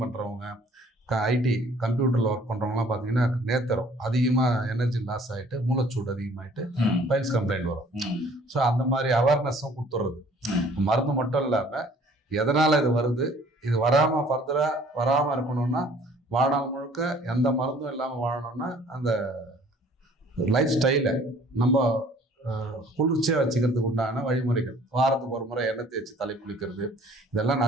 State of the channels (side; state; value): both; normal; correlation 0.55